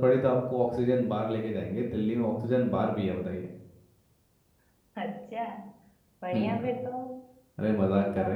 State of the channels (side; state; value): both; identical; correlation 1.00